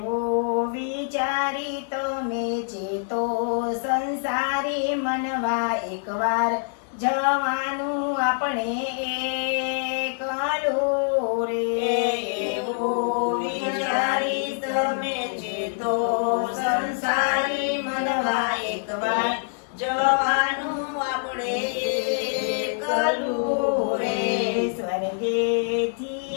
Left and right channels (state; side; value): silent; right; digital silence